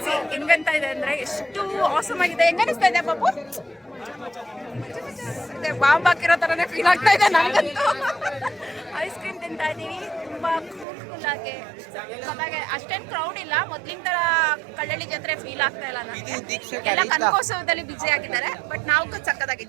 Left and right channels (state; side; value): drops out; left; at 10.9 s